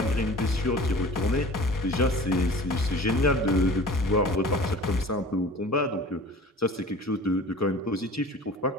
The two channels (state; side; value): normal; both; correlation 0.43